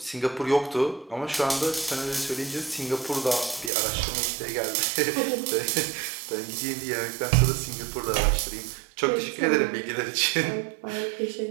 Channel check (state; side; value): drops out; left; at 3.7 s